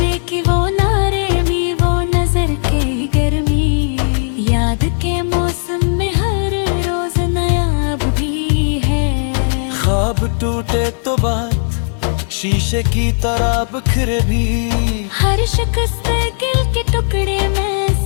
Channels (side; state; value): right; silent; 69 dB below the other